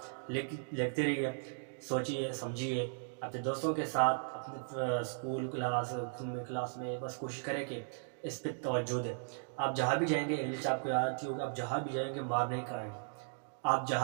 لکھتے رہیے، سوچیے، سمجھیے اپنے دوستوں کے ساتھ، اپنے اسکول کلاس میں بس کوشش کریں کہ اس پہ توجہ دیں. آپ جہاں بھی جائیں گے انگلش آپ کو آتی ہوگی، آپ جہاں بھی جائیں گے مار نہیں کھائیں گے، آپ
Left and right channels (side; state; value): left; silent; digital silence